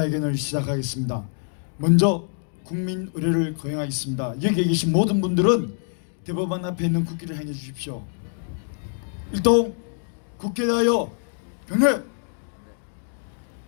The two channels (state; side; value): silent; right; digital silence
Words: 시작하겠습니다. 먼저 국민 의례를 거행하겠습니다. 여기에 계신 모든 분들은 대법원 앞에 있는 국기를 행해 주십시오. 일동 국기에 대하여 경례!